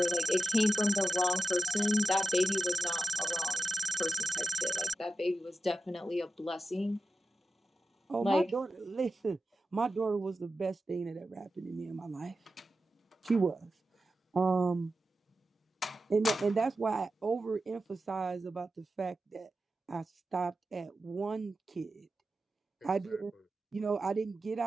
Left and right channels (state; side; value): normal; both; correlation 0.93